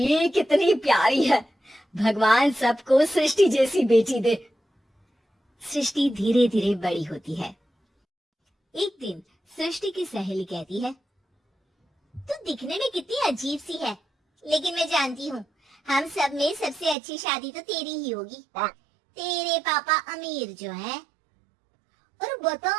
कितनी प्यारी है, भगवान सबको सृष्टि जैसी बेटी दे। सृष्टि धीरे धीरे बड़ी होती है। एक दिन सृष्टि की सहेली कहती है, तू दिखने में कितनी अजीब सी है, लेकिन मैं जानती हूँ हम सब में सबसे अच्छी शादी तो तेरी ही होगी। तेरे पापा अमीर जो है। और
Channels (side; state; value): left; drops out; at 16.9 s